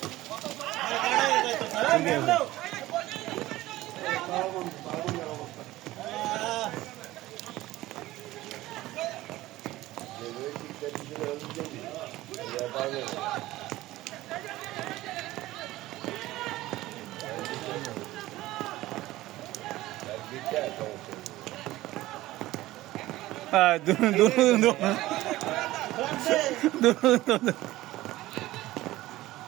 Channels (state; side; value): quieter; left; 16.9 dB